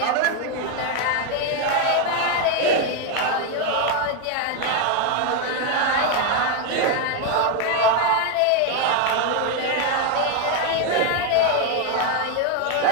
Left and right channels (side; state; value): both; different; correlation 0.01